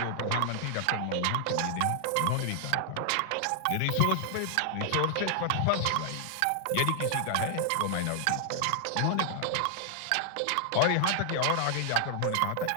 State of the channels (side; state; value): both; different; correlation 0.00